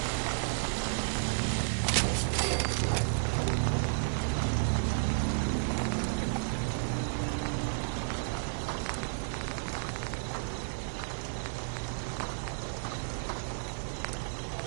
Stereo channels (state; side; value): silent; left; digital silence